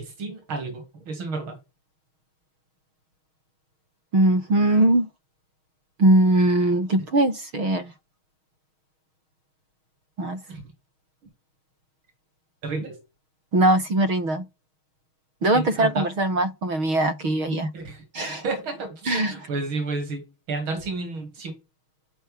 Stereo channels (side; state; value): left; late; 6.4 ms